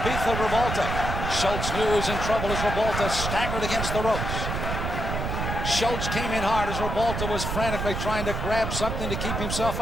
of Ribalta. Schulz knew he was in trouble as Ribalta staggered against the ropes. Schulz came in hard as Ribalta was frantically trying to grab something to keep himself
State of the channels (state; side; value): noise; right; rumble, 3 dB below the sound